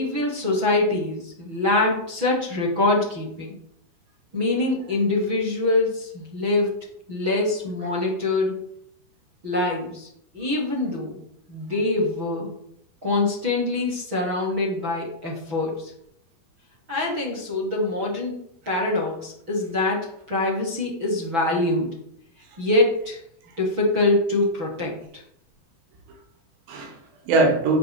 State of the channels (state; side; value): late; left; 6.1 ms